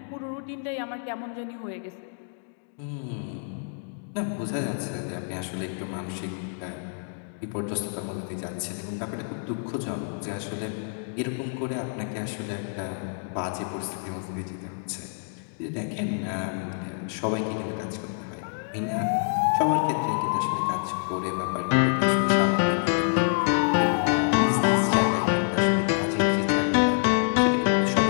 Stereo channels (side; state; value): right; silent; digital silence